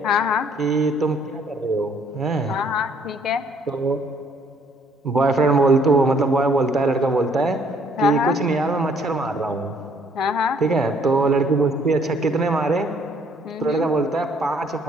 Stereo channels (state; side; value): normal; both; correlation 0.63